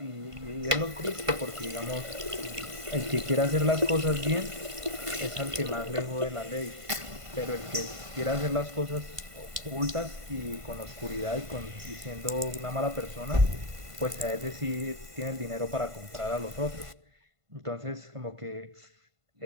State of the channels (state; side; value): late; left; 1.5 ms